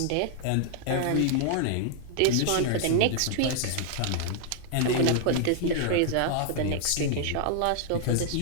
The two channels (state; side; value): different; both; correlation -0.01